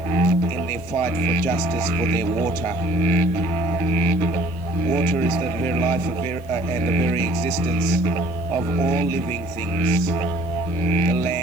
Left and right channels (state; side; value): noise; left; hiss, 28 dB below the sound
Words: in their fight for justice for their water. Water is the very life and the very existence of all living things. The